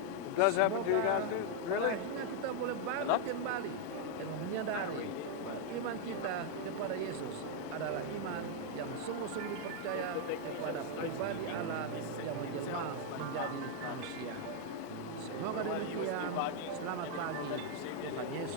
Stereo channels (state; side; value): different; both; correlation 0.00